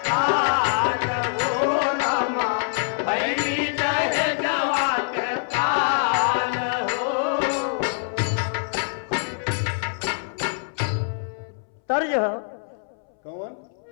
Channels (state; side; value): silent; right; 62 dB below the other